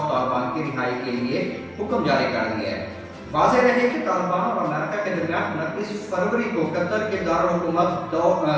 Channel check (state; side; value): identical; both; correlation 1.00